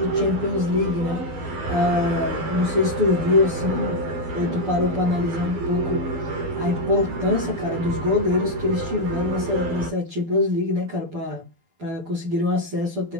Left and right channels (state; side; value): late; left; 12 ms